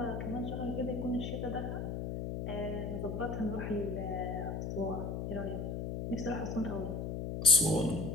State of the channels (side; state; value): left; noise; hum, 3 dB below the sound